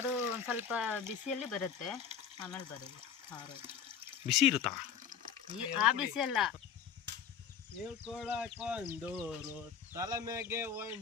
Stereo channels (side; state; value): right; quieter; 7.5 dB